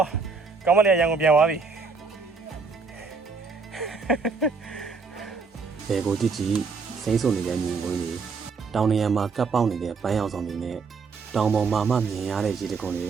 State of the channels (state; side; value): quieter; left; 4.8 dB